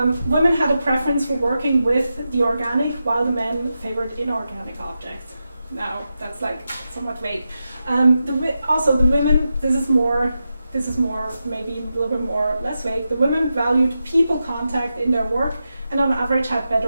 had a preference for working with the organic while the men favored inorganic objects. Now that's like somewhat vague. Also the women, this is more maybe a little bit more less vague. The women valued people contact in their work and on average had better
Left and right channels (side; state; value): both; inverted; correlation -0.89